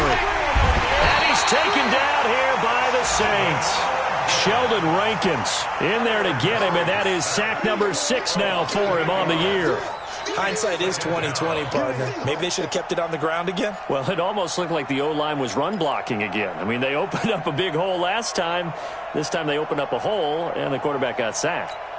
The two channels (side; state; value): both; identical; correlation 1.00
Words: And he's taken down here by the Saints. Sheldon Rankins in there to get him, and that is sack number 6 now for him on the year. Hindsight is 20/20, partner. Maybe they should have kept it on the ground again. Well, it almost looked like the O-line was run blocking again. I mean, they opened up a big hole last time. This time they opened up a hole, and the quarterback got sacked.